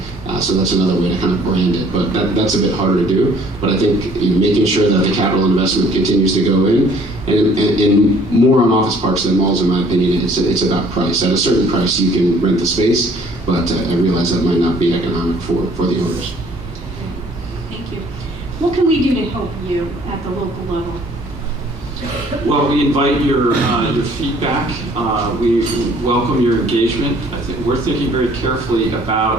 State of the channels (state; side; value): normal; both; correlation 0.57